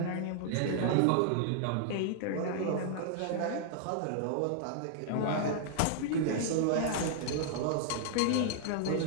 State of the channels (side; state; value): both; different; correlation -0.01